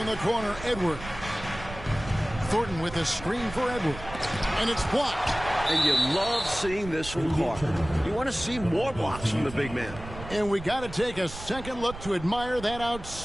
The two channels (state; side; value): noise; right; rumble, 13 dB below the sound